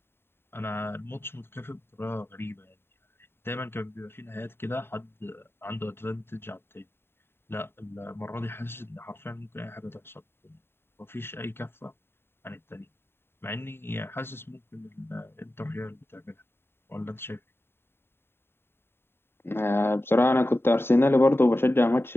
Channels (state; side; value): late; right; 0.11 ms